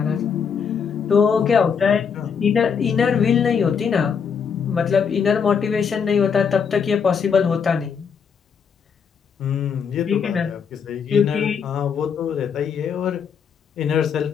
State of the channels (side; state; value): right; quieter; 6.6 dB